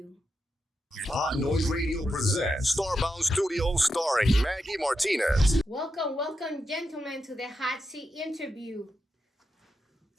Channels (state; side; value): normal; both; correlation 0.87